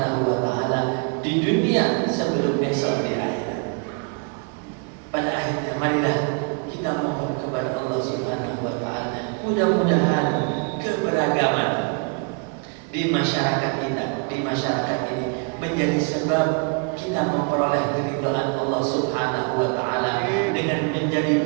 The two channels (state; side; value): quieter; left; 35.7 dB